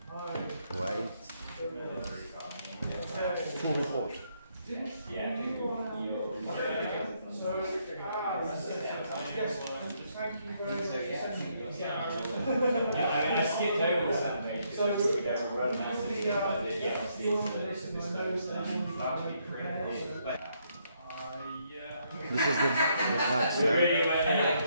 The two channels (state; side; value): inverted; both; correlation -0.74